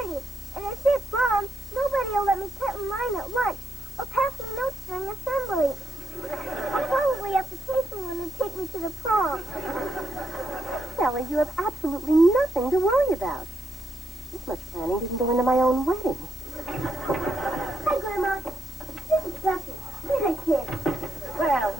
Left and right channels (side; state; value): both; normal; correlation 0.81